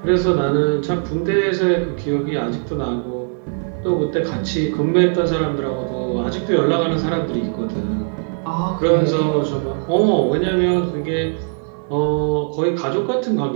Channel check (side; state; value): left; silent; 66 dB below the other